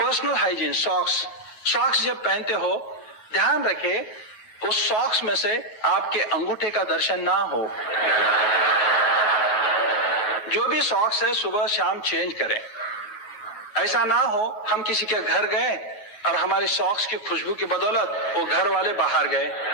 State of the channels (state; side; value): late; right; 9.4 ms